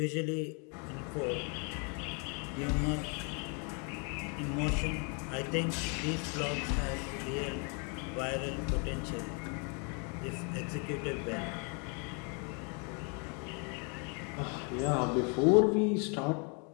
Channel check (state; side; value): quieter; right; 36.7 dB